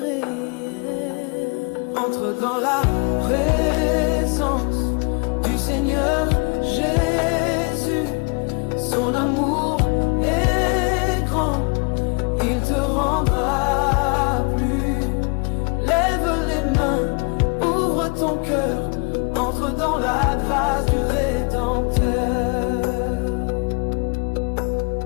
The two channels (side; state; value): right; quieter; 33.3 dB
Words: Entre dans la présence du Seigneur Jésus, son amour est grand, il te rendra plus. Lève les mains, ouvre ton cœur, entre dans la grâce du Rédempteur.